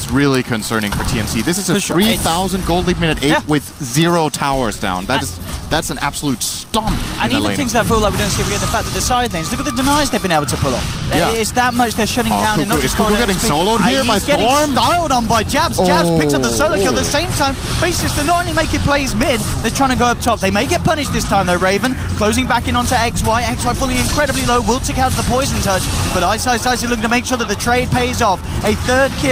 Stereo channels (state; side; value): identical; both; correlation 1.00